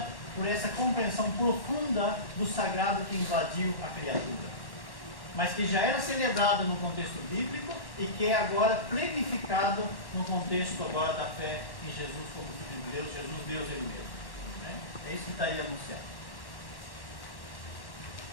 por essa compreensão profunda do sagrado que invadiu a criatura, mas que já era celebrado no contexto bíblico e que é agora plenificado no contexto agora da fé em Jesus como Filho de Deus, Jesus Deus Ele mesmo. Né? É isso que está aí anunciado.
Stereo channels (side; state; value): right; late; 1.1 ms